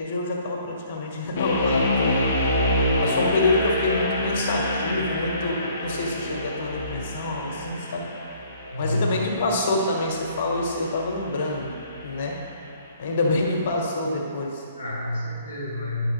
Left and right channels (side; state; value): both; inverted; correlation -0.60